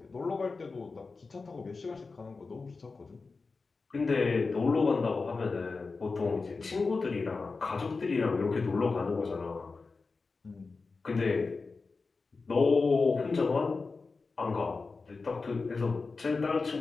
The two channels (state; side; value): quieter; right; 4.2 dB